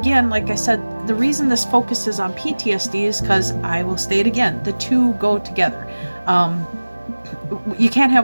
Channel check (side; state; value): both; inverted; correlation -1.00